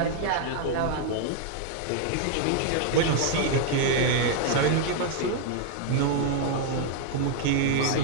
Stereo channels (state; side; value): different; both; correlation 0.00